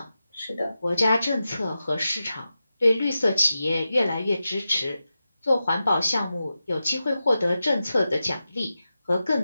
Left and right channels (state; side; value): inverted; both; correlation -0.92